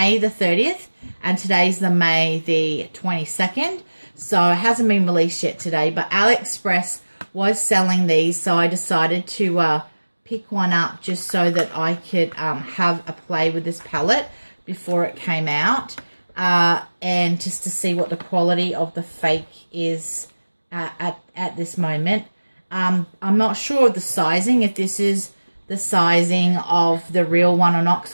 the 30th, and today's the May the 22nd, so it hasn't been released yet today, but AliExpress was selling these, so I decided to pick one up just so that I could have a play with this palette before it came out, and just to see what the quality of the fake is at this moment. I'm not sure of the sizing, if this is the sizing of the real one or not, because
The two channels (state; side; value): inverted; both; correlation -1.00